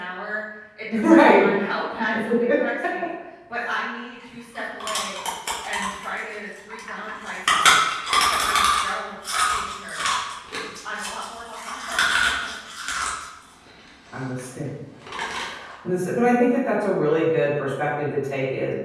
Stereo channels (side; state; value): both; identical; correlation 1.00